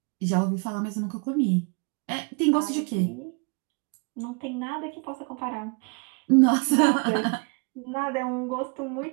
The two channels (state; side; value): quieter; left; 34.3 dB